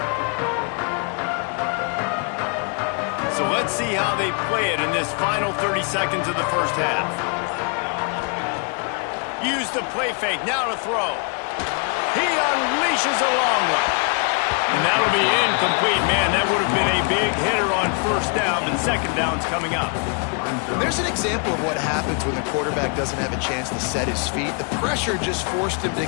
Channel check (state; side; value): quieter; right; 38.3 dB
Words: Let's see how they play it in this final 30 seconds of the first half. Use the play fake, now to throw. He unleashes a long one. And that'll be incomplete, man. That would have been a big hitter on first down, and second down's coming up. There's an example of what happens when the quarterback doesn't have a chance to set his feet. The pressure just forced him to